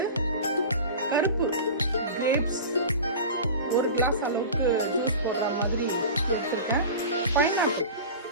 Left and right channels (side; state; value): both; inverted; correlation -0.33